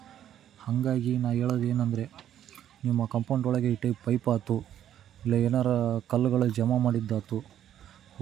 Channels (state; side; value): quieter; left; 10.8 dB